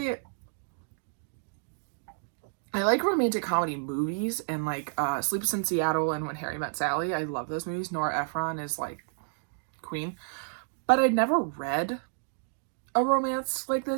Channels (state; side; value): silent; left; digital silence